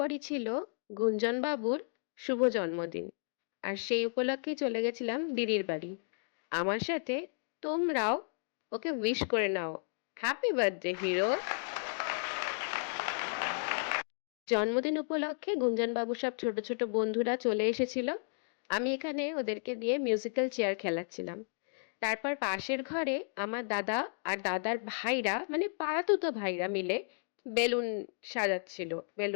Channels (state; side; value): silent; right; digital silence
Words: ছিল গুঞ্জন বাবুর শুভ জন্মদিন। আর সেই উপলক্ষেই চলে গেছিলাম দিদির বাড়ি। আমার সাথে তোমরাও ওকে উইশ করে নাও। Happy birthday hero. জন্মদিন উপলক্ষে গুঞ্জন বাবুর সব ছোট ছোট বন্ধুরা চলে এসেছিল। আমি এখানে ওদেরকে দিয়ে মিউজিক্যাল চেয়ার খেলাচ্ছিলাম। তারপর পাশের ঘরে আমার দাদা আর দাদার ভাইরা, মানে পাড়াতুতো ভাইরা মিলে বেলুন সাজাচ্ছিল,